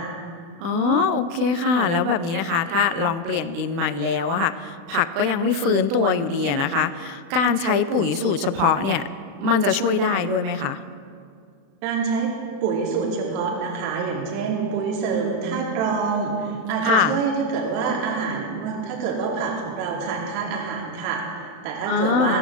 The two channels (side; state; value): left; late; 36 ms